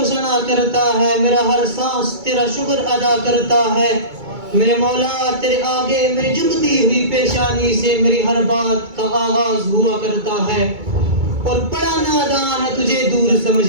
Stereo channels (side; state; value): left; late; 2.2 ms